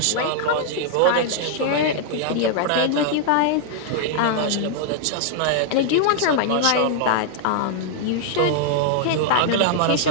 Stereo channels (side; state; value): both; different; correlation 0.00